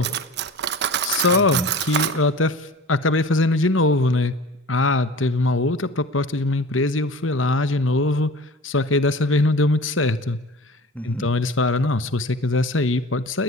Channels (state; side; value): normal; both; correlation 0.39